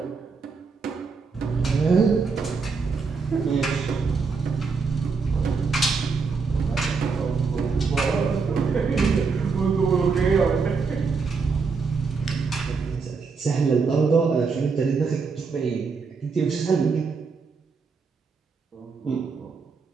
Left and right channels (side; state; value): left; quieter; 4.9 dB